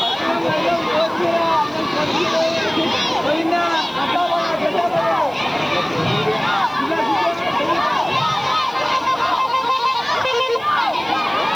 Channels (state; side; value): noise; right; hiss, 28 dB below the sound